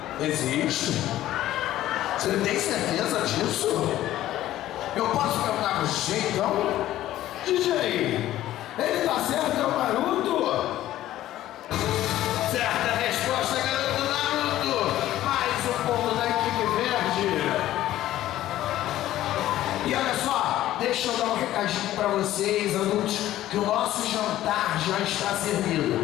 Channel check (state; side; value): quieter; right; 14.0 dB